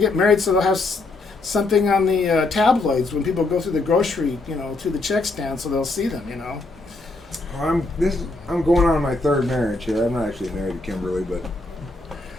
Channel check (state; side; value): quieter; right; 3.1 dB